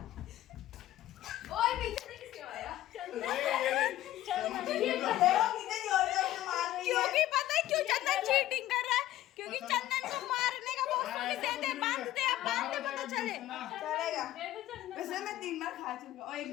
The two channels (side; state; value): right; quieter; 14.3 dB